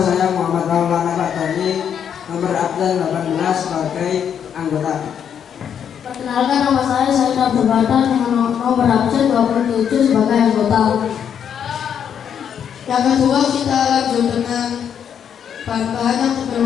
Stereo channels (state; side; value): quieter; right; 8.3 dB